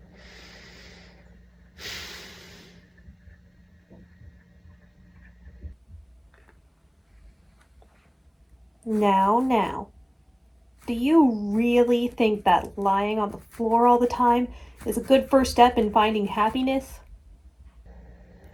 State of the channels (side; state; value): both; identical; correlation 1.00